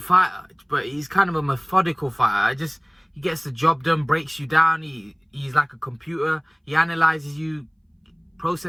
fighter, but he's kind of a methodical fighter. He gets the job done, breaks you down. He's like a computer. He analyzes you,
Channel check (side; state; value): both; identical; correlation 1.00